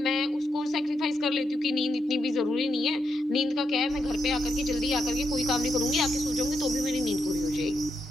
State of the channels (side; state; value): both; normal; correlation 0.82